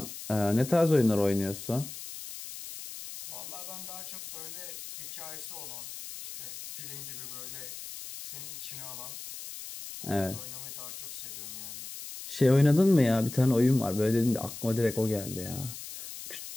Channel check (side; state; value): left; noise; hiss, 11 dB below the sound